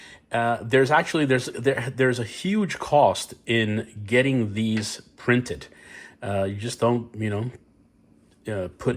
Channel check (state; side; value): identical; both; correlation 1.00